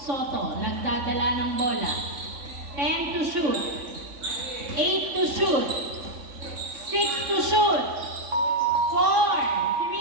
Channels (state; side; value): late; left; 3.6 ms